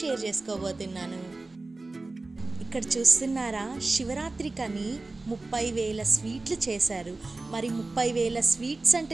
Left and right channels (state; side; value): quieter; left; 3.3 dB